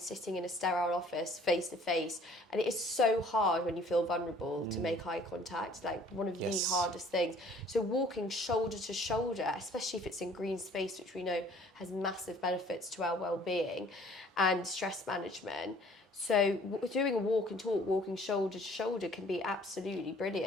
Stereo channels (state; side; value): normal; both; correlation 0.55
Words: in a sterile office face to face. And it is so hard when you feel vulnerable to make eye contact, like one of the hardest things. So walking shoulder to shoulder, especially if it's in green space, which we know has massive benefits to our well-being and stress management. So doing a walk and talk, walking shoulder to shoulder, can be absolutely